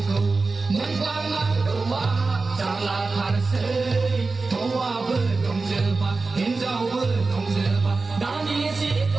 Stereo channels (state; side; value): quieter; left; 3.9 dB